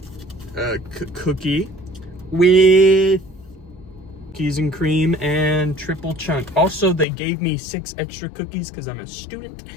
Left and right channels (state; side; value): drops out; right; at 7.1 s